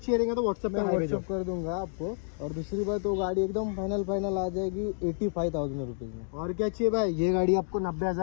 रहेगा तो व्हाट्सएप कर दूंगा आपको. और दूसरी बात, वो गाड़ी एकदम फाइनल आ जाएगी 85,000 रुपीज में. और क्या चाहिए भाई, ये गाड़ी आपको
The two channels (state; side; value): silent; right; digital silence